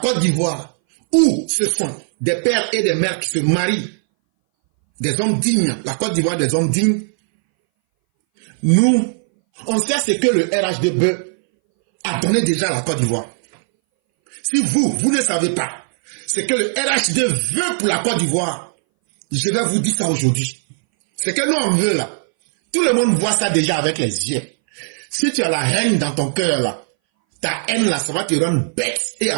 Côte d'Ivoire, où ce sont des pères et des mères qui se marient, des hommes dignes, la Côte d'Ivoire des hommes dignes, nous, on sait ce que le RHDP a donné déjà à la Côte d'Ivoire. Si vous ne savez pas ce que le RHD veut pour la Côte d'Ivoire, je vais vous dire ça aujourd'hui. Ce que nous on veut là, tout le monde voit ça déjà avec les yeux. Si tu as la haine dans ton cœur là, ta haine là, ça va te rendre bête et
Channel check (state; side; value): silent; left; 62 dB below the other